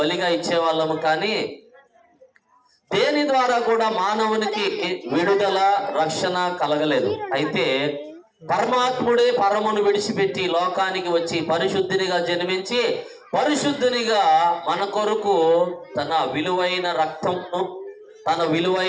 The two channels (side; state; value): both; identical; correlation 1.00